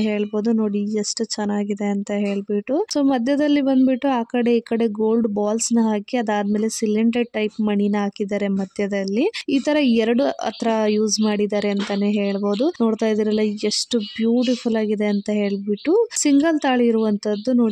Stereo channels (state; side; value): identical; both; correlation 1.00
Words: ಹೇಳ್ಬೋದು. ನೋಡಿ ಎಷ್ಟು ಚೆನ್ನಾಗಿದೆ ಅಂತ ಹೇಳ್ಬಿಟ್ಟು. ಸೊ ಮಧ್ಯದಲ್ಲಿ ಬಂದ್ಬಿಟ್ಟು ಆ ಕಡೆ ಈ ಕಡೆ ಗೋಲ್ಡ್ ಬಾಲ್ಸ್ ನ ಹಾಕಿ ಅದಾದ್ಮೇಲೆ ಸಿಲಿಂಡರ್ ಟೈಪ್ ಮಣಿನ ಹಾಕಿದ್ದಾರೆ ಮಧ್ಯದಲ್ಲಿ. ಈ ತರ 2 ಹತ್ರ ಯೂಸ್ ಮಾಡಿದ್ದಾರೆ ಅಂತಾನೆ ಹೇಳ್ಬೋದು. ನೋಡ್ತಾ ಇದೀರಲ್ಲ ಎಷ್ಟು ಬ್ಯೂಟಿಫುಲ್ ಆಗಿದೆ ಅಂತ ಹೇಳ್ಬಿಟ್ಟು. ಸಿಂಗಲ್ ತಾಳಿ ಇರುವಂತದ್ದು